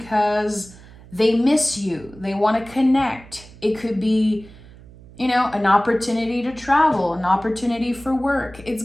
they miss you. They want to connect. It could be, an opportunity to travel, an opportunity for work. It's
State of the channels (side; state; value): right; noise; hum, 21 dB below the sound